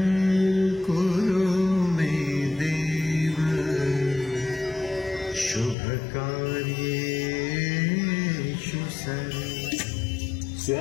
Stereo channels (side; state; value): right; drops out; at 5.8 s